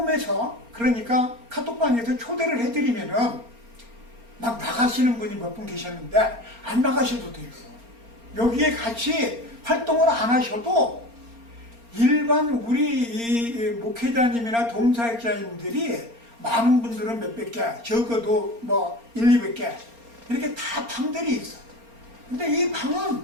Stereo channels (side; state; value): left; late; 4.3 ms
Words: 그러니까 카톡방에서 초대를 해드리면은 막 나가시는 분이 몇 분 계셨는데 안 나가셔도 돼요. 여기에 같이 활동을 안 하셔도 일반 우리 이 목회자님이나 동사역자님들이 많은 분들은 몇백 개, 적어도 뭐 1, 200개 이렇게 다 방들이 있어. 근데 이 방은